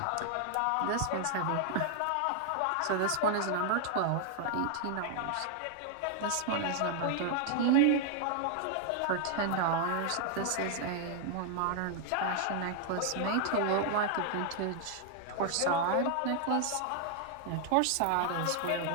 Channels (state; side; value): different; both; correlation 0.00